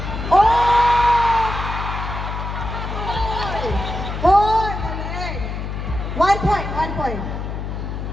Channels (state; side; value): noise; left; hum, 5 dB below the sound